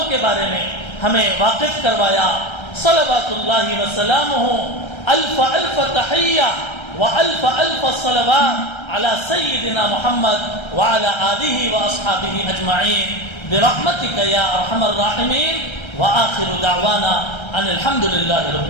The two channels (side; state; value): right; late; 1.3 ms